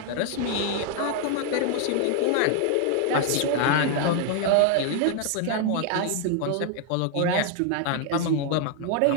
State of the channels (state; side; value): different; both; correlation 0.00